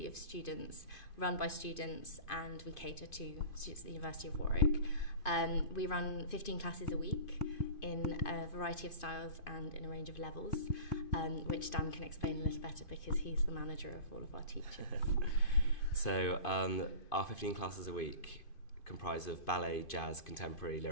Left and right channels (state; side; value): late; right; 2.5 ms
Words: of students, run by students, and we cater to students at the University of Warwick. We run 15 classes a week in a variety of styles and in a range of levels, which Dan can explain a little better because he's the manager of all of our teachers. So our 15 classes a week comprise of ballet, jazz, contemporary,